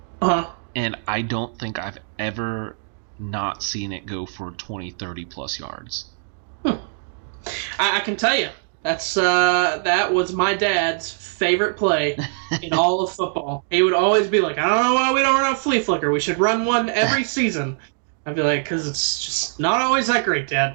And I don't think I've ever not seen it go for 20, 30 plus yards. I can tell you. That was my dad's favorite play in all of football. He would always be like, I don't know why we don't run a flea flicker. We should run one every season. I'd be like, because it's just not always that great, Dad.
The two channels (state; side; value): silent; left; digital silence